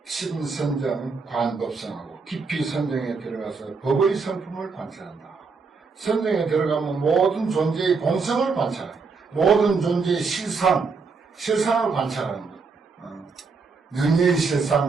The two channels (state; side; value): quieter; left; 4.8 dB